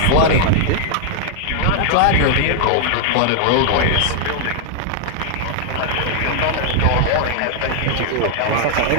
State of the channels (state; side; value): different; both; correlation 0.00